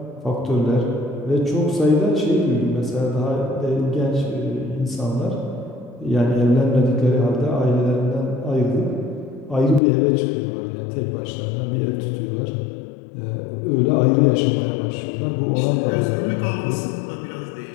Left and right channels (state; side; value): drops out; right; at 9.8 s